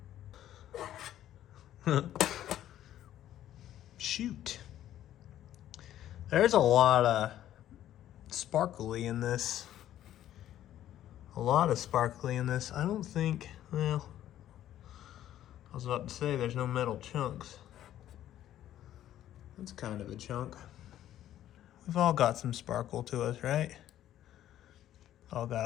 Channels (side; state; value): right; quieter; 12.2 dB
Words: that? Shoot. There's a lot of sparkly in this. A lot of sparkly in this. I don't think, well, I was about to say there's no metal chunks. That's kind of a chunk. We've all got some sparkle to us, right? All got